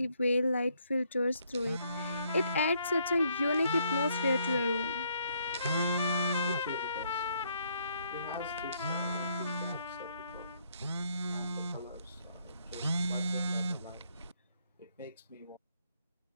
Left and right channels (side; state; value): both; inverted; correlation -0.71